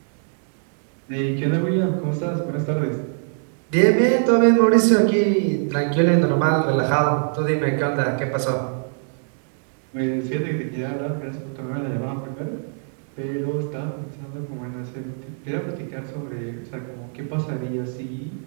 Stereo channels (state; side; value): silent; left; digital silence